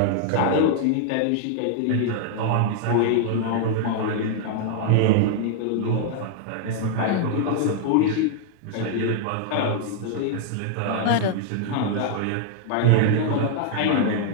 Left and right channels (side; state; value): both; different; correlation 0.00